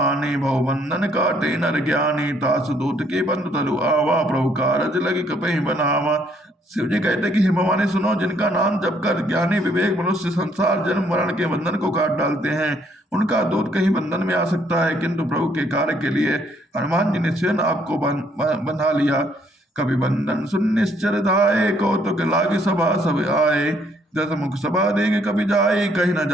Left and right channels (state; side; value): normal; both; correlation 0.67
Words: भवबंधन काटे नर ज्ञानी, तासु दूत के बंधु तलु आवा, प्रभु कारज लगी कपहि बनावा। शिव जी कहते कि हे भवानी सुनो, जिनका नाम जपकर ज्ञानी विवेक मनुष्य संसार जन्म मरण के बंधन को काट डालते हैं, उनका दूत कहीं बंधन में आ सकता है, किंतु प्रभु के कार्य के लिए हनुमान जी ने स्वयं आपको बंधा लिया। कभी बंधन सुन निश्चर धाये, कौतुक लागे सभा सब आए, दस मुख सभा देंगे कभी जाए, कहीं न